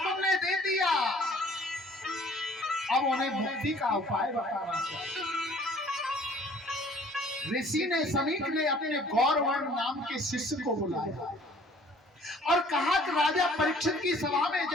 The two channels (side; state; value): both; normal; correlation 0.54